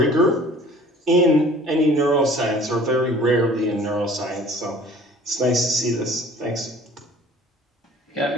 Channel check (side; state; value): both; normal; correlation 0.49